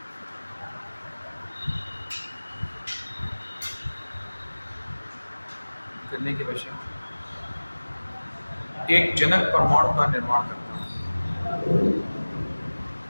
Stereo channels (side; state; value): both; inverted; correlation -1.00